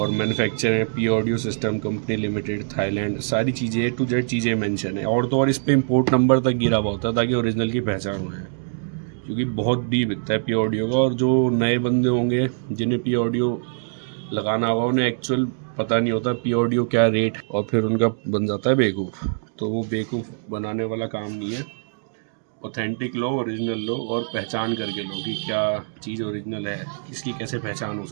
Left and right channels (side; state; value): left; silent; digital silence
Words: मैन्युफैक्चर है P audio system company limited, Thailand, सारी चीज़ें टू जेड चीज़ें मेंशन है। और तो और इस पर इंपोर्ट नंबर तक गिरा हुआ होता है ताकि ओरिजिनल की पहचान हो जाए, क्योंकि बहुत भी बिकता है पी ऑडियो का। और जो नए बंदे होंगे जिन्हें पी ऑडियो लगाना होगा उन्हें एक्चुअल पता नहीं होता पी ऑडियो क्या रेट, और फिर उनका बन जाता है बेवकूफ़। तो वो बेवकूफ़ बनाने वाला काम नहीं है। ऑथेंटिक लो, ओरिजिनल लो, और पहचान करके लो कि क्या चीज़ ओरिजिनल है, इसकी कैसे पहचान हो